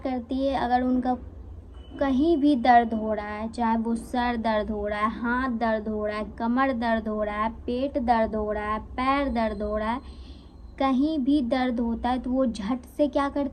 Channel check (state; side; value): identical; both; correlation 1.00